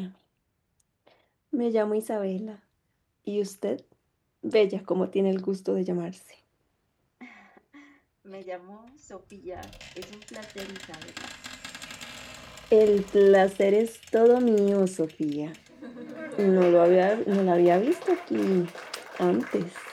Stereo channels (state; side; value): identical; both; correlation 1.00